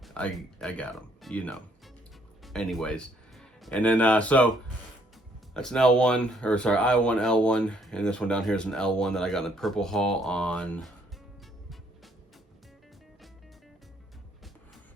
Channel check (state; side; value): normal; both; correlation 0.67